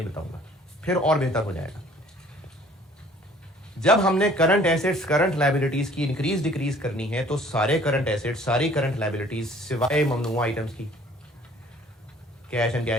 बताऊंगा, फिर और बेहतर हो जाएगा। जब हमने करंट एसेट्स करंट लायबिलिटीज की इंक्रीज डिक्रीज करनी है तो सारे करंट एसेट्स सारी करंट लायबिलिटीज सिवाय ममनुआ आइटम्स की, cash and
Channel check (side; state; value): both; normal; correlation 0.54